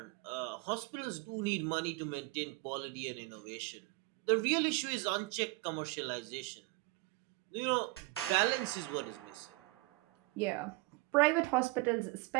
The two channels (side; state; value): left; quieter; 23.2 dB